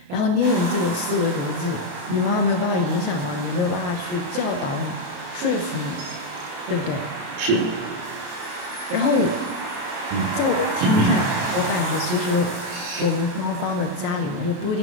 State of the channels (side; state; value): left; late; 28 ms